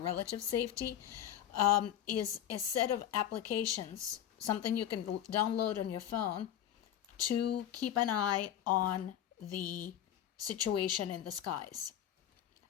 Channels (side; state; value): right; quieter; 10.7 dB